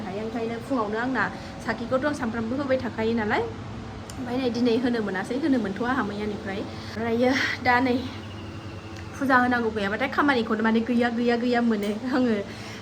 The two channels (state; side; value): identical; both; correlation 1.00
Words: हायो ओंखायनो फुङावनो आंना साखिखौथ' आं सानफ्रामबो होबाय थाखायो नालाय ओमफ्राय नै दिनै होनो मोनासै होनो मोनथ'आ आंहा मैयानिफ्राय ओमफ्रायो दा नै फुजा होनांगौ गैयाबाथाय खामानिखौनो माने गैया मोनो आङो